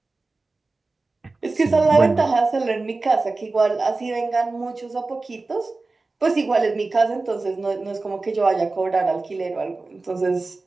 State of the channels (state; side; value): quieter; left; 3.5 dB